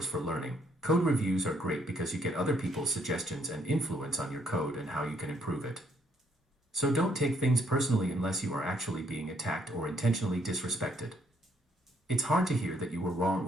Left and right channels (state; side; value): normal; both; correlation 0.69